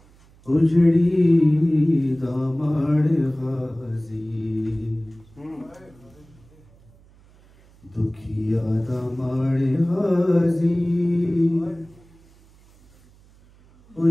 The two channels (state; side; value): noise; right; hum, 28 dB below the sound